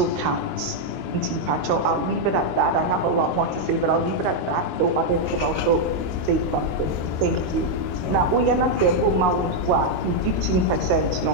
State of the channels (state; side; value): late; left; 22 ms